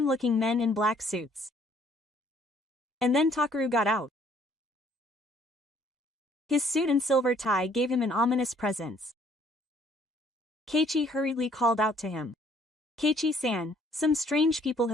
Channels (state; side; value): normal; both; correlation 0.62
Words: men in black suits. And then Takaru got out. His suit and silver tie gave him an ominous presence. Keiichi hurriedly called out to him. Keiichi-san, some strange people